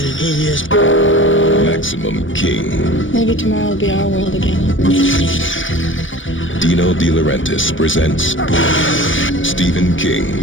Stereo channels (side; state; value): right; late; 0.56 ms